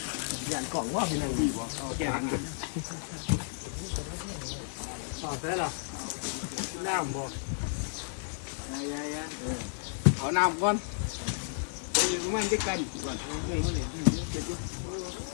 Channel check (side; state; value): right; silent; digital silence